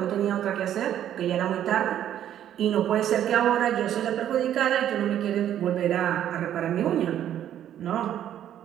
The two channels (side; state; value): left; quieter; 10.8 dB